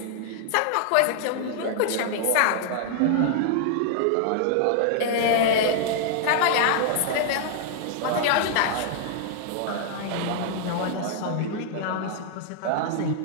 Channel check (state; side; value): different; both; correlation -0.01